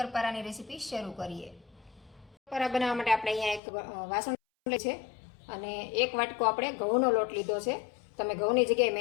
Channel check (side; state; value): right; drops out; at 3.6 s